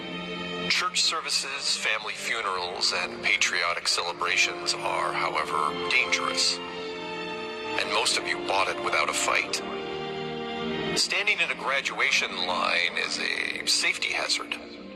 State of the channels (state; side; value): identical; both; correlation 1.00